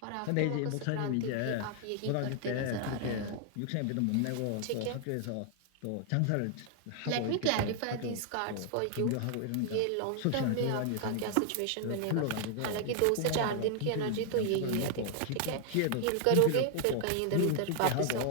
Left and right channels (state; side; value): different; both; correlation 0.00